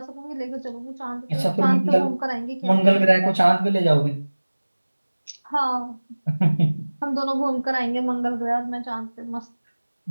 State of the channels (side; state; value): both; inverted; correlation -1.00